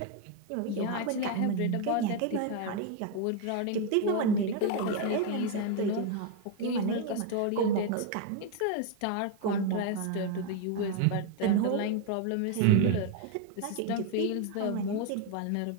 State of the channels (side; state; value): both; different; correlation 0.01